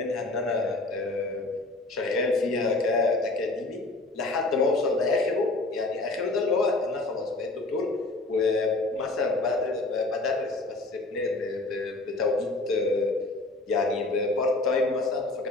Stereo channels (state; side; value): quieter; right; 3.0 dB